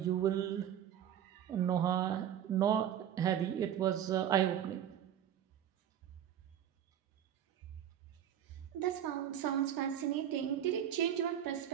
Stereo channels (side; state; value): left; quieter; 10.1 dB